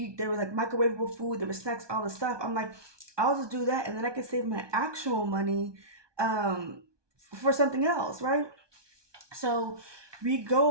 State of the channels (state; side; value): late; left; 1.2 ms